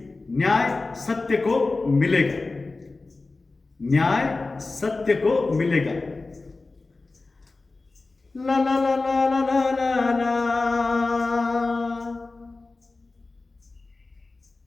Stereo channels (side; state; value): right; quieter; 3.5 dB